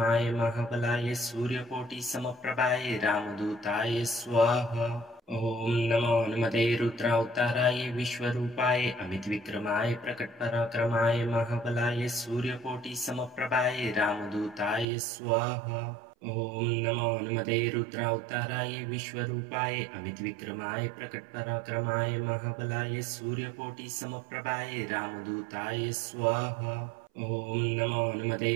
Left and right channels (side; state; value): left; drops out; at 14.9 s